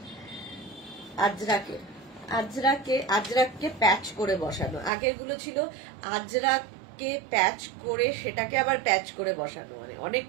আজরাককে প্যাচ করে বসানো। আগেরগুলো ছিল আজরাককে প্যাচ করে সেটাকে আবার প্যাচ করে বসানো, মানে অনেক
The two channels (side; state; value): left; drops out; at 4.9 s